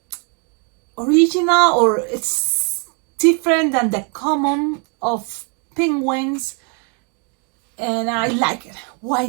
original, or it's different than the common of penguins, and I like it. Why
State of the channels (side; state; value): left; quieter; 37.5 dB